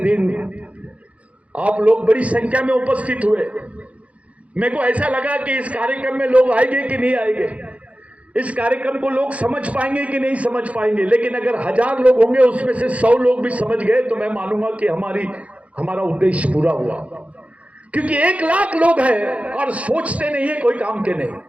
आप लोग बड़ी संख्या में उपस्थित हुए। मेरे को ऐसा लगा कि इस कार्यक्रम में लोग आएंगे कि नहीं आएंगे, इस कार्यक्रम को लोग समझ पाएंगे कि नहीं समझ पाएंगे। लेकिन अगर 1000 लोग होंगे, उसमें से 100 लोग भी समझ गए तो मैं मानूंगा कि हमारा उद्देश्य पूरा हुआ। क्योंकि 1 लाख लोग हैं और सोचते नहीं है, कोई काम के नहीं,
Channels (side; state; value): left; late; 0.064 ms